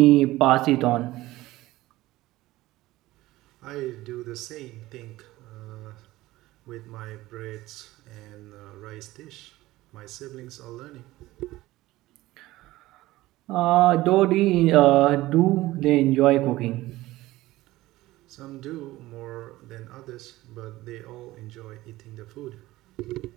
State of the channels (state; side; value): quieter; left; 17.5 dB